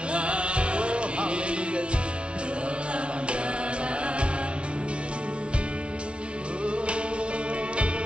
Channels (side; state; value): left; late; 0.059 ms